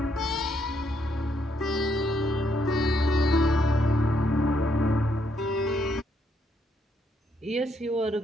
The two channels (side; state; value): both; normal; correlation 0.74